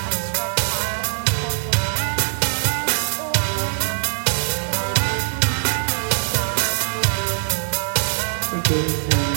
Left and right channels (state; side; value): silent; left; digital silence